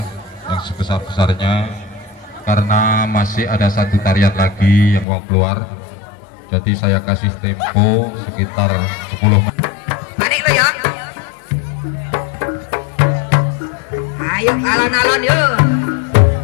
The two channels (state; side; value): drops out; right; at 5.1 s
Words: yang sebesar-besarnya karena masih ada satu tarian lagi yang mau keluar. Jadi saya kasih tempo sekitar 10 menit. Panik lo ya. Ayo alon-alon yuk.